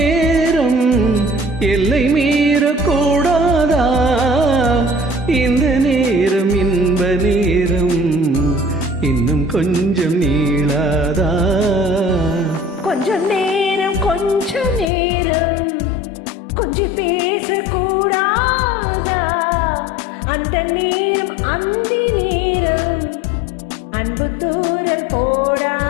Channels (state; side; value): drops out; right; at 14.9 s